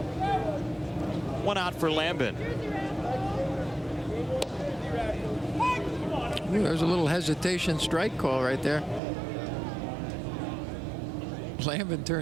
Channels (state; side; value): drops out; left; at 9.0 s